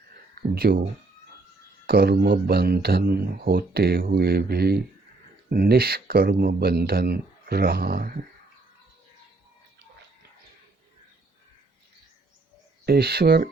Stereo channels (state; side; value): quieter; left; 3.3 dB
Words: जो कर्म बंधन होते हुए भी निष्कर्म बंधन रहा है। ईश्वर